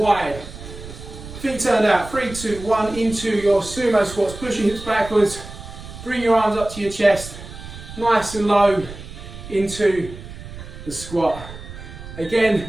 Feet turned out. 3, 2, 1. Into your sumo squats. Push your hips backwards. Bring your arms up to your chest. Nice and low into the squat. Again,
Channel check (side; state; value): right; noise; rumble, 13 dB below the sound